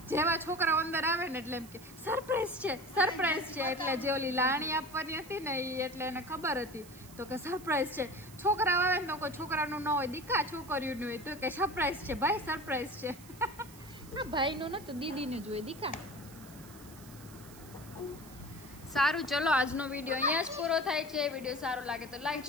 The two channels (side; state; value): right; noise; hiss, 20 dB below the sound